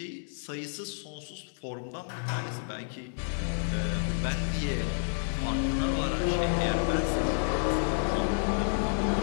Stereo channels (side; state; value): right; silent; digital silence